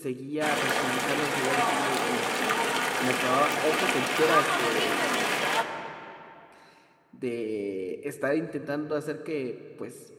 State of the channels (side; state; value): both; identical; correlation 1.00